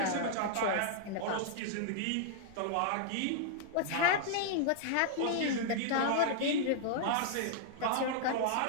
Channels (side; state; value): both; different; correlation -0.01